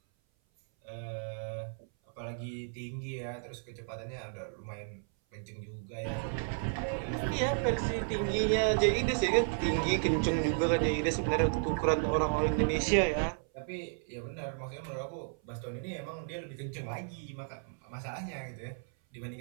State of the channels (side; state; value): left; silent; 55 dB below the other